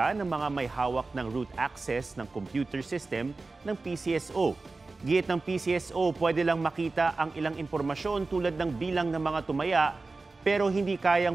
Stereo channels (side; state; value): left; quieter; 3.6 dB